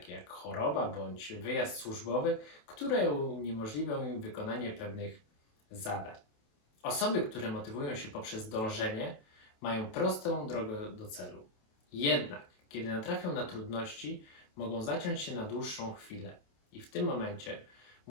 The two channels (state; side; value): late; right; 28 ms